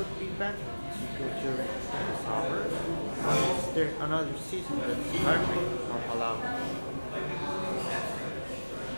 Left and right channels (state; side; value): inverted; both; correlation -1.00